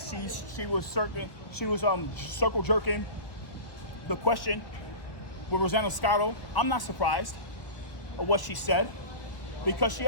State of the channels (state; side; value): late; right; 1.4 ms